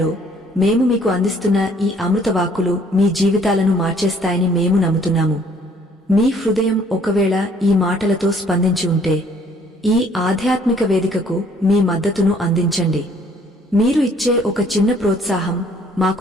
మేము మీకు అందిస్తున్న ఈ అమృతవాక్కులు మీ జీవితాలను మార్చేస్తాయని మేము నమ్ముతున్నాము. మీ హృదయం ఒకవేళ ఈ మాటలతో స్పందించి ఉంటే ఈ ఆధ్యాత్మిక వేదికకు మీ మద్దతును అందించండి. మీరు ఇచ్చే ఒక చిన్న ప్రోత్సాహం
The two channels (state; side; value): normal; both; correlation 0.60